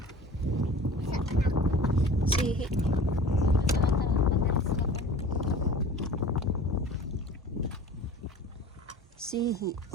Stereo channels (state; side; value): normal; both; correlation 0.42